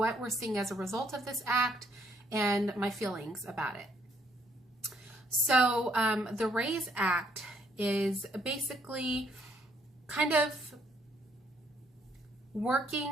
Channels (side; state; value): both; normal; correlation 0.69